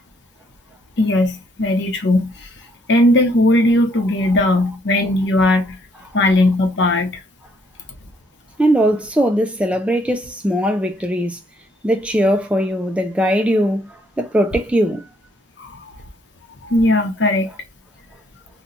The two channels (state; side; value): normal; both; correlation 0.68